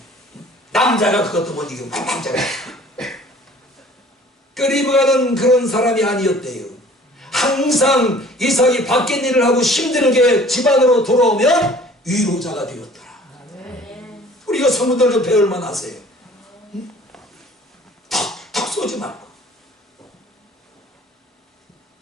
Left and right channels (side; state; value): both; normal; correlation 0.50